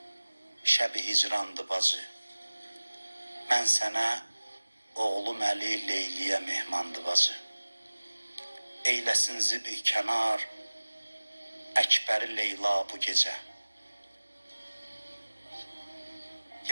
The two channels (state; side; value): inverted; both; correlation -1.00